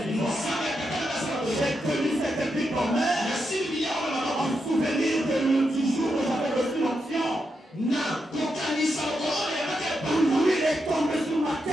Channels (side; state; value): both; normal; correlation 0.84